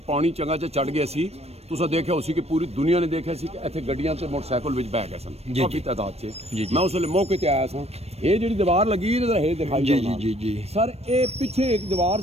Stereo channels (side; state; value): left; late; 0.30 ms